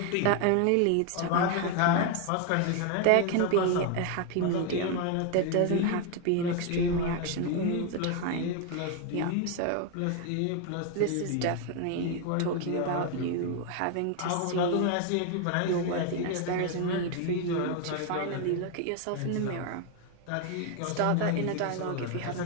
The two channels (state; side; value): different; both; correlation 0.01